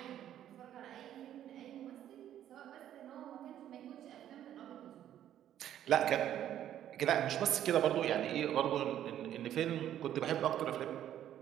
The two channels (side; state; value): left; quieter; 11.2 dB